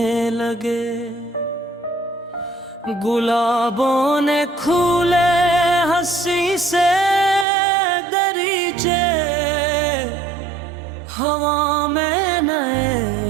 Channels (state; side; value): drops out; left; at 7.5 s